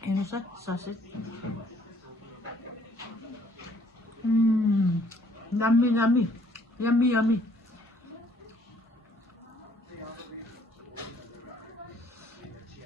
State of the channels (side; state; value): both; normal; correlation 0.62